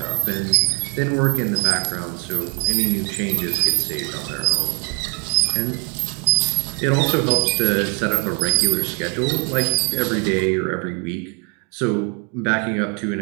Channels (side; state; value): left; quieter; 35.9 dB